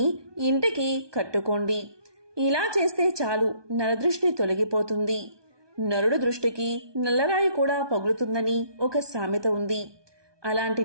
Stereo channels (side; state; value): left; late; 1.2 ms